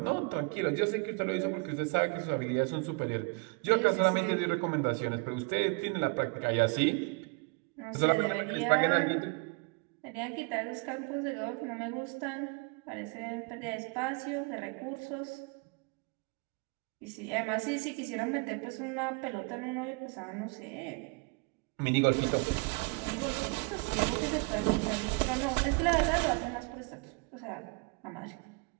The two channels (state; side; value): quieter; left; 30.2 dB